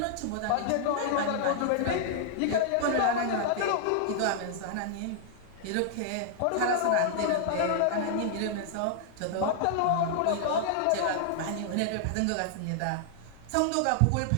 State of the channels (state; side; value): different; both; correlation -0.01